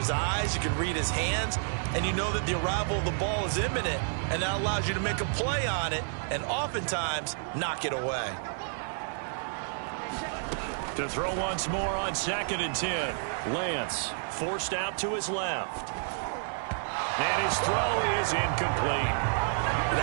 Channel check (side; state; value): left; silent; digital silence